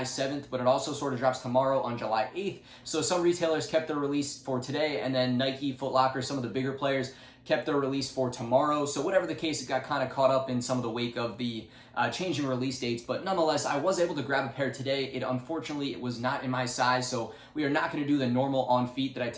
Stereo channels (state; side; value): identical; both; correlation 1.00